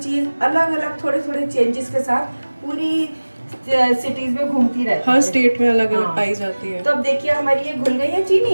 चीज़ अलग अलग थोड़े थोड़े चेंजेस के साथ पूरी सिटीज में घूमती रहती है, हर स्टेट में अलग अलग हाँ। पाई जाती है। तो अब देखिए हमारी ये घुल गई है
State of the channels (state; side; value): inverted; both; correlation -1.00